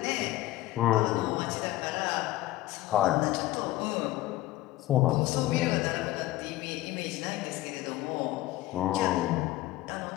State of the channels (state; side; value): quieter; right; 16.4 dB